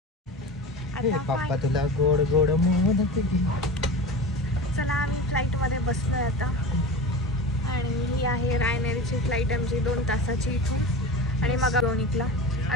पप्पा तुला गोड गोड मोदक. चला आम्ही फ्लाईटमध्ये बसलो आहे आता. आणि ही आहे रायनेरीची फ्लाईट आमची 2 तासाची इथून. आणि मग डुब्रोनिकला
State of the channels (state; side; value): normal; both; correlation 0.30